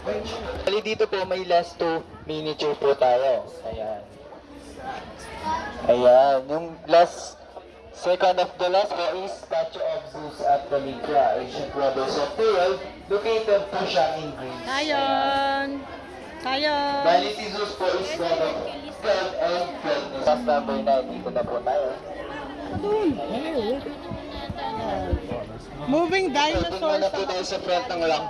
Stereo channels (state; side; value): identical; both; correlation 1.00